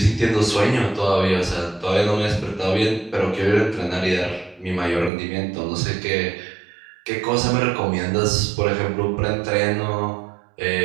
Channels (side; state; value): left; drops out; at 5.1 s